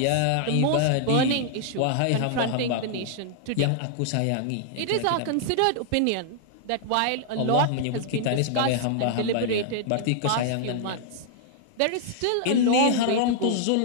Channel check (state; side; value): different; both; correlation -0.01